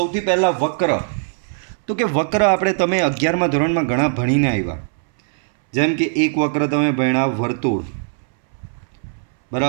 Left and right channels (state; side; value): silent; left; 65 dB below the other